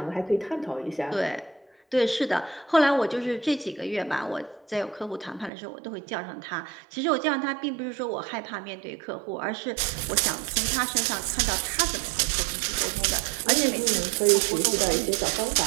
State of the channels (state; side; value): drops out; left; at 5.5 s